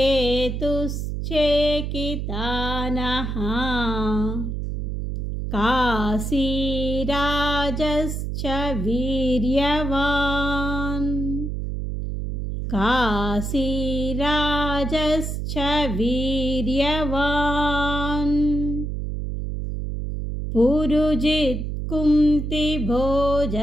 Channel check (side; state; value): right; noise; hum, 3 dB below the sound